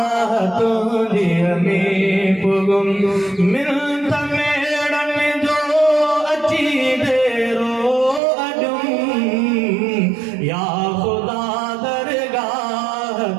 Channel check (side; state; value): left; drops out; at 8.2 s